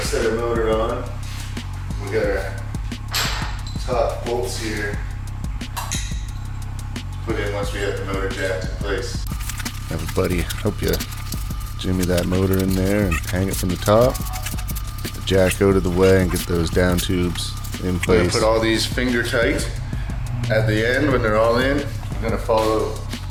set our motor on. We got our top bolts here put in once we have the motor jacked in place. Have a buddy help you jimmy that motor in there and hang it from the top. Get the jack out of the way and get those down tubes in place. We're gonna put all these finger tight at the end when they're all in. We're gonna follow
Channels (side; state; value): both; identical; correlation 1.00